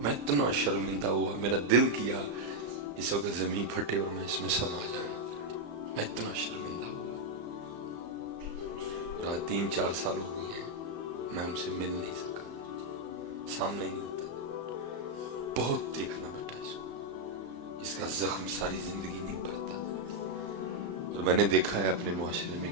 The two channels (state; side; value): late; left; 35 ms